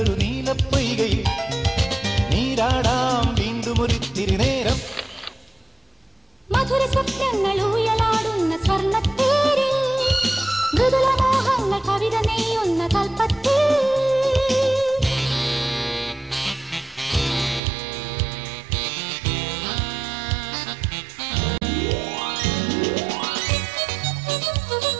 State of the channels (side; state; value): left; drops out; at 17.6 s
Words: നീലപ്പൊയ്കയിൽ നീരാടാം വീണ്ടും ഒരിത്തിരി നേരം. മധുര സ്വപ്നങ്ങൾ ഊയലാടുന്ന സ്വർണ്ണത്തേരിൽ മൃദുലമോഹങ്ങൾ കവിത നെയ്യുന്ന കൽപ്പത്തിൽ